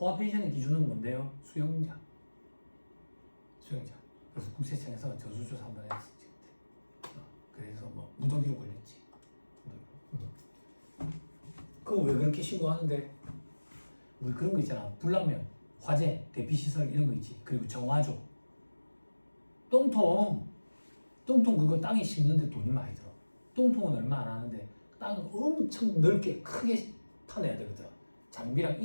펜션의 기준은 뭔데요? 수영장. 그래서 국세청에서 전수조사 한번 했었지 그때. 그래서 뭐 무더기로 걸렸지. 그거 왜 그렇게 신고하는데? 우리 그런 거 있잖아. 불나면 화재, 대피시설 이런 거 있지. 그리고 정화조. 똥통 그거 땅에 심는데 돈이 많이 들어. 똥통은 얼마 안 하는데 땅을 엄청 넓게 크게 파내야 되거든. 장비랑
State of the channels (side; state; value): both; inverted; correlation -1.00